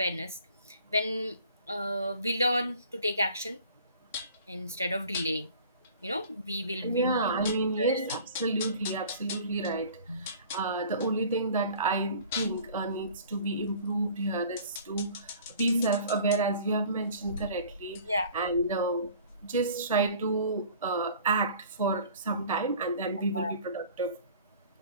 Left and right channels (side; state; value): both; inverted; correlation -0.48